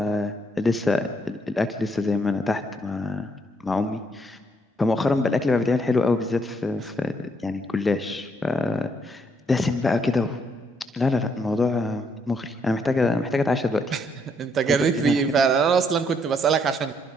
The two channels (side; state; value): both; normal; correlation 0.72